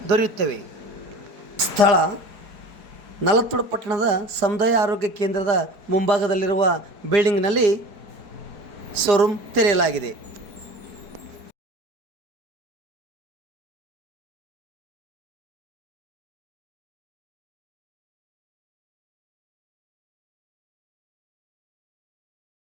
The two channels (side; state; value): left; late; 4.6 ms